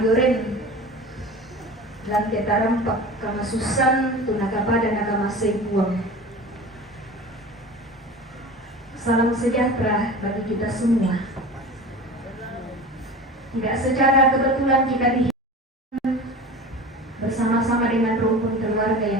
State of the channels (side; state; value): both; normal; correlation 0.35